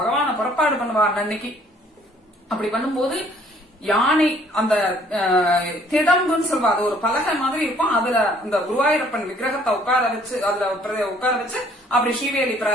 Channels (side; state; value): both; normal; correlation 0.60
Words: புறப்பாடு பண்ணுவா அன்னைக்கு. அப்படி பண்ணும்போது யானை அந்த திடம்புன்னு சொல்வா, அது ஒரு பலகை மாதிரி இருக்கும், அதுல அந்த குருவாயூரப்பன் விக்கிரகத்தை உட்கார வச்சு அதுல உட்கார வச்சு அப்படி ஸ்ரீவேலி